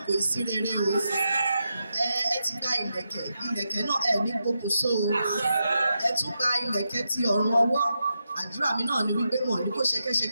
ìsírere o. Ẹ ti gba ìlẹ̀kẹ̀ náà ẹ ní gbókùnso o. Ẹ tún gba ìlẹ̀kẹ̀ ti ọ̀run ọwọ́. Àdúrà mi náà ni wípé wọn ò ní kó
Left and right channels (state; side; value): inverted; both; correlation -0.86